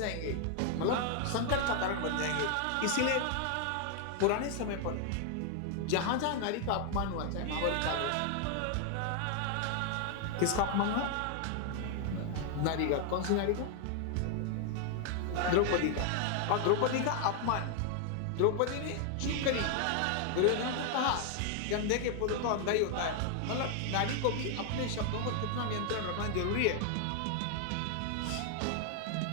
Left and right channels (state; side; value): different; both; correlation 0.00